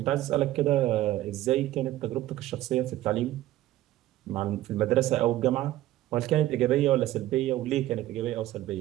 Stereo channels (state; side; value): quieter; left; 14.9 dB